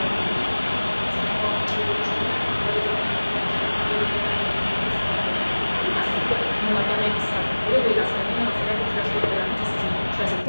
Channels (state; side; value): inverted; both; correlation -1.00